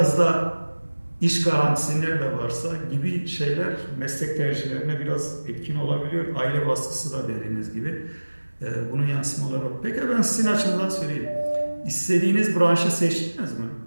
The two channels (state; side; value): inverted; both; correlation -1.00